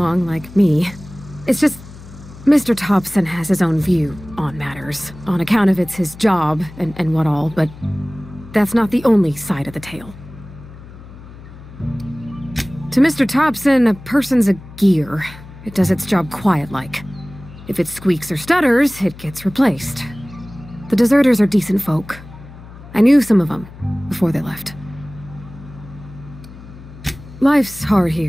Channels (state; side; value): noise; left; hum, 17 dB below the sound